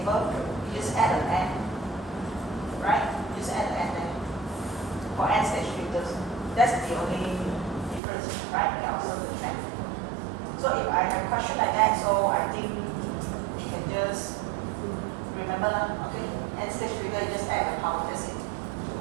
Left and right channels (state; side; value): drops out; left; at 8.0 s